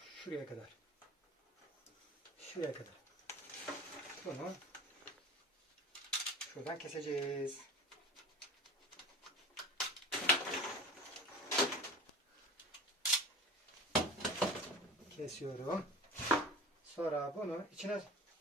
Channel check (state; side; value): normal; both; correlation 0.35